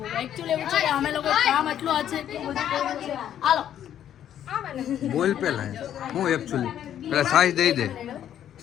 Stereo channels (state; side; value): quieter; right; 10.4 dB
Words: એકચ્યુઅલી એવું છે કે અમે લોકો કામ એટલું છે કે બધું કર્યું છે. હાલો બોલ પેલા હું એકચ્યુઅલી પેલા સાઈઝ દઈ દે.